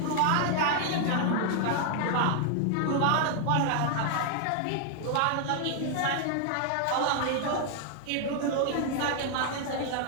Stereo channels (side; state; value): both; different; correlation 0.00